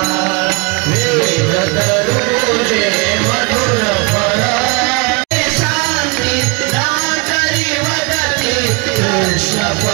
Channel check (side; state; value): left; quieter; 28.8 dB